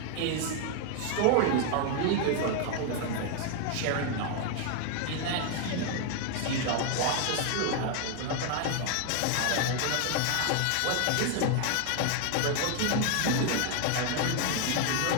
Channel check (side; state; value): both; different; correlation 0.01